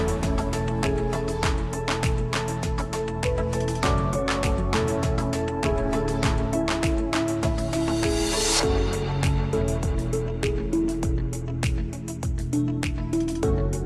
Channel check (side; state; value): both; identical; correlation 1.00